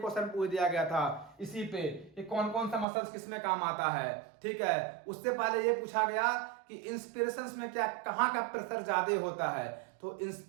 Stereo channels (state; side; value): drops out; left; at 2.9 s